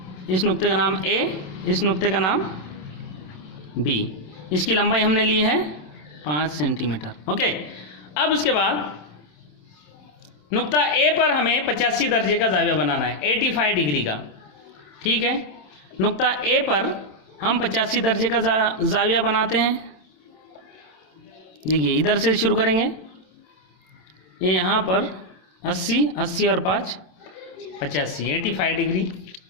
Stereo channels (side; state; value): right; late; 27 ms